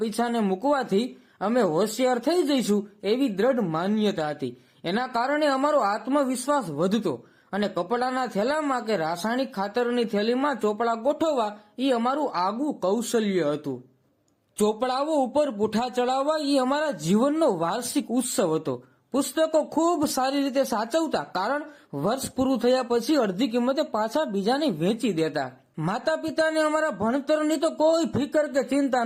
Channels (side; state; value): both; identical; correlation 1.00